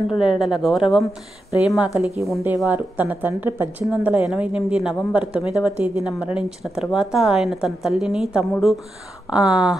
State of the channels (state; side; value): normal; both; correlation 0.88